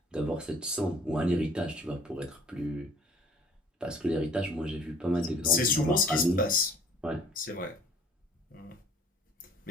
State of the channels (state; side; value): normal; both; correlation 0.53